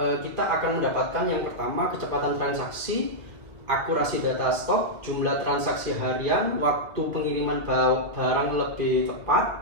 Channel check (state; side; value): late; left; 2.3 ms